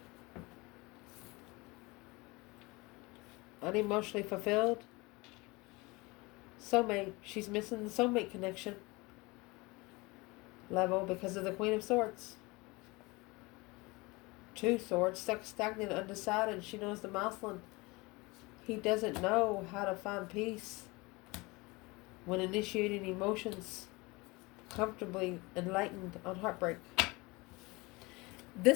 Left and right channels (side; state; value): right; quieter; 24.4 dB